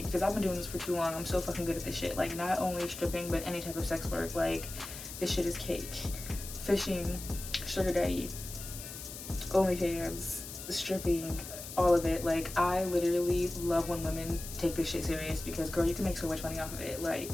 because I've been doing this for too long. I'm so fucking good at this shit. Like, not only stripping, but any type of sex work. Like, this shit is cake. Fishing, sugar daddy, OnlyFans, stripping, all of it. Like, I literally love when women take this shit serious, because girl, you can make so much money off of it. Like,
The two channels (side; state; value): left; noise; hiss, 10 dB below the sound